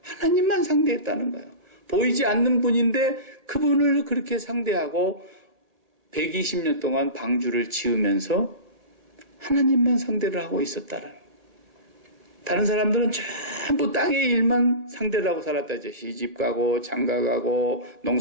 하나님만 상대했다는 거예요. 보이지 않는 분인데 그분을 그렇게 상대하고 120년 동안 방주를 지으면서 하나님만 상대를 하고 있었다는 거예요. 다른 사람들은 전부 땅의 일만 상대를 하고 살았다죠. 시집 가고 장가 가고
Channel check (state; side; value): late; left; 1.1 ms